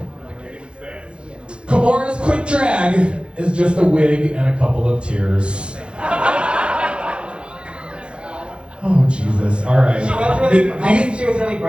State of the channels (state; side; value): late; left; 0.057 ms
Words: quick drag is just a wig and a couple of tears. Oh Jesus! All right. She was really, I think she was really